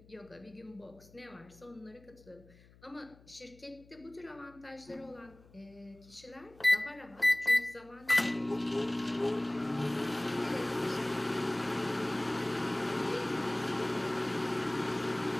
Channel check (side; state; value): left; noise; hum, 25 dB below the sound